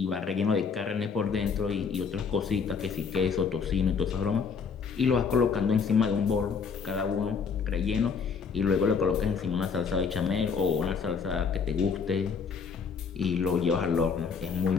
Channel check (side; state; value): right; quieter; 5.8 dB